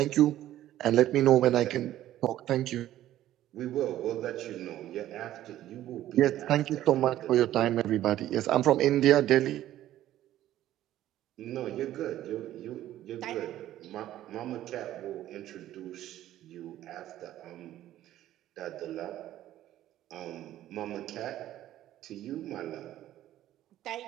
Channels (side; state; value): left; quieter; 13.3 dB